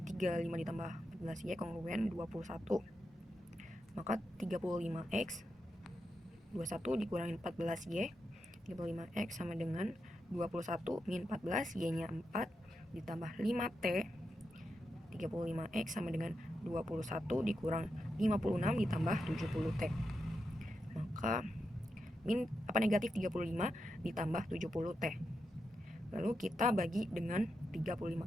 35 ditambah 14Y kongruen 21. Maka 35X 21 dikurangi 14Y, 35X sama dengan 21 min 14, Y-nya 4 ditambah 5T. 35X sama dengan 21 dikurang 56 ditambah 70T. Maka negatif 35 ditambah 70T. Lalu kita bagi dengan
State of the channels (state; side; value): normal; both; correlation 0.86